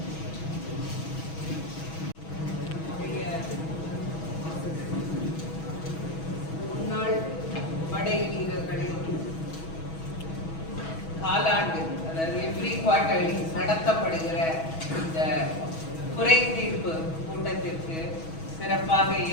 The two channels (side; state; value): right; late; 6.2 ms